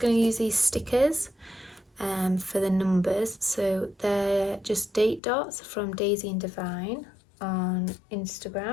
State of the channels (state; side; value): drops out; right; at 5.2 s